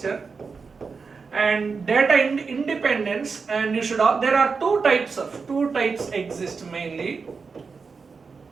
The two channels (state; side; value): quieter; left; 5.0 dB